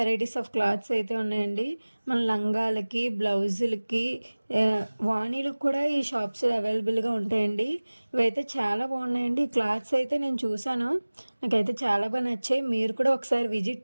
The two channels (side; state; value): both; inverted; correlation -1.00